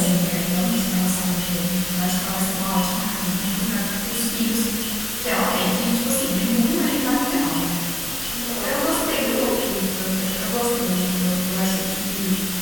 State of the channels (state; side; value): noise; left; hum, 22 dB below the sound